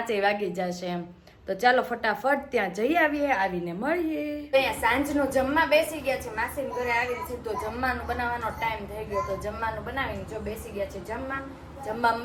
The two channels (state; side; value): identical; both; correlation 1.00